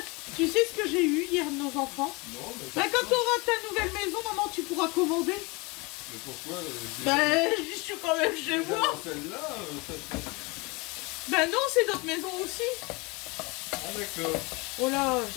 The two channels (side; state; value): right; quieter; 26.6 dB